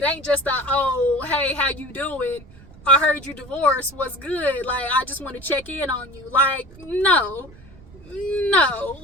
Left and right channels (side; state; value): right; noise; rumble, 22 dB below the sound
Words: ain't just a, oh, hey, how you doing? I heard you divorced. What's good? Like, I just want to check in on you. Like, no.